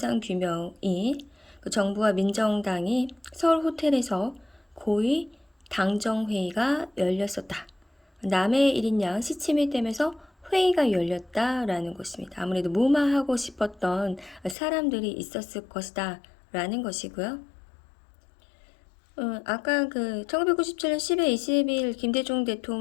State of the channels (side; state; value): right; drops out; at 14.6 s